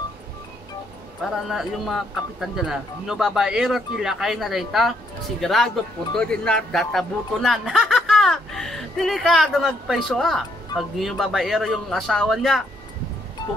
Para na yung mga kapitan dyan na no babaero tila kayo na data sigurado puto din na databutunan. Delikado magpaiso pag yung babaero yung asawa niya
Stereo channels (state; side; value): normal; both; correlation 0.72